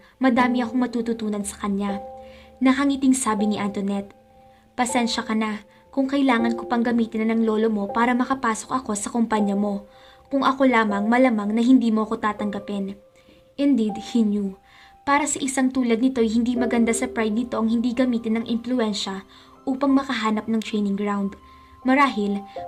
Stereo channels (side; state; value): both; identical; correlation 1.00